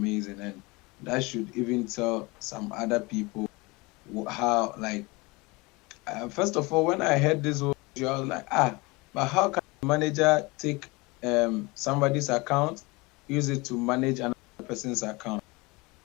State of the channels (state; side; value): quieter; right; 24.7 dB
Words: and that should even tell some other people how, like, first of all, when I heard this, I was like, but how can a manager take somebody's account, use it to manage another person's account?